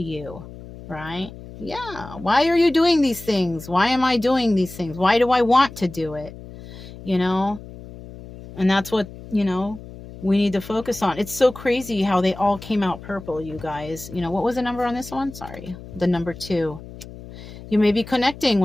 you, right? Yeah. Why are you doing these things? Why am I doing these things? Why do I want to do it? And that's what, we need to focus on. It's so crazy how they all came out purple, you guys. What was the number on this one? Sorry. The number 2. You may be connecting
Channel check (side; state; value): left; noise; hum, 15 dB below the sound